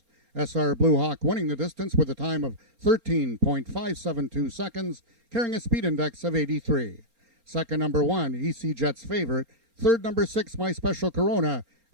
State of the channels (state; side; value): late; left; 4.3 ms